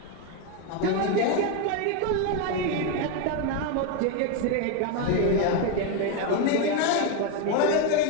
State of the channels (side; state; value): both; different; correlation 0.02